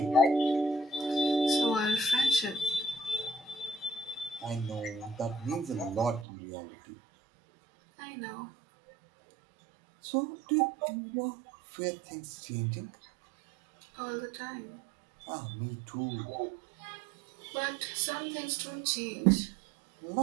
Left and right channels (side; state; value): left; drops out; at 6.2 s